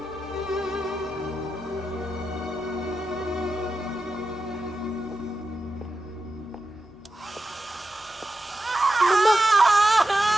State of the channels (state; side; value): normal; both; correlation 0.90